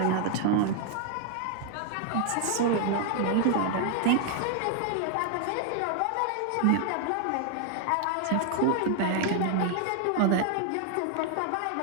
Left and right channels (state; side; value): different; both; correlation 0.00